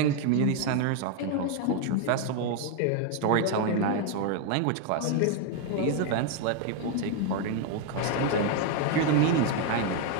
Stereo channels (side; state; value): both; different; correlation 0.01